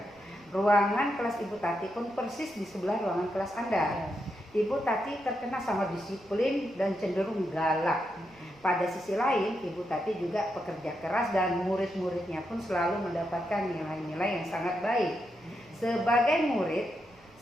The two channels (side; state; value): right; noise; rumble, 28 dB below the sound